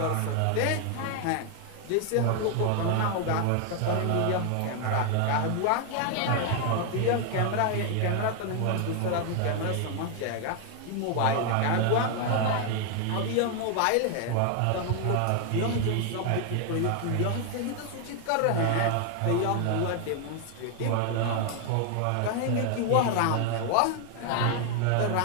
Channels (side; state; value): both; different; correlation 0.00